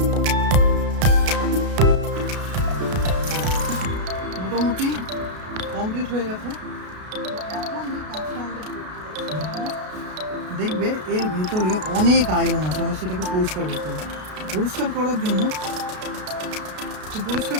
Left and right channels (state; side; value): late; left; 33 ms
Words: মোটামুটি কমপ্লিট হয়ে গেছে। এখন যে কাজটা আমাদের করতে হবে, দেখবে এর ভেতরে অনেক আয়রন আছে, আমরা সেটাকে পরিষ্কার করতে হবে। পরিষ্কার করার জন্য